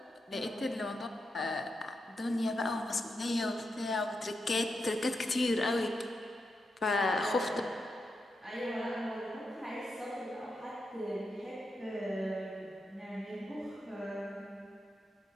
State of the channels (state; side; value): normal; both; correlation 0.86